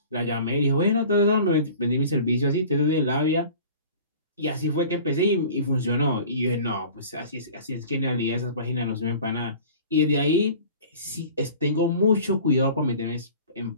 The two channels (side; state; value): both; inverted; correlation -0.44